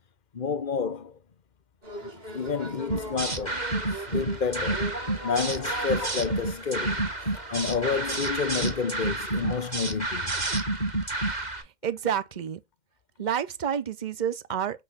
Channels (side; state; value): right; late; 2.1 ms